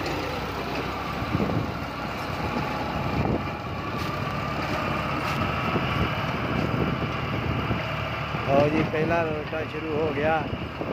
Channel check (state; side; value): identical; both; correlation 1.00